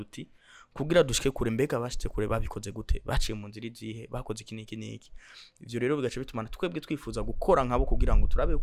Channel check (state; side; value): identical; both; correlation 1.00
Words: kugira dushike kure mbega bashitse kure babikoze gute, baciye mu nzira izihe, bakoze iki niki. Ivyo rero bigace bitumana twebwe twifuza gukora nkabo kugira ngo turabe